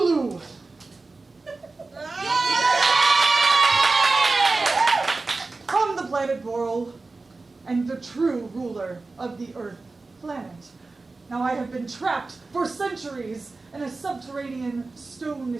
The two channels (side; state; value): left; quieter; 3.6 dB